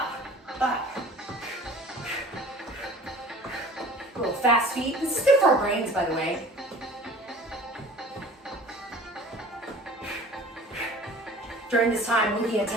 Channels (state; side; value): normal; both; correlation 0.46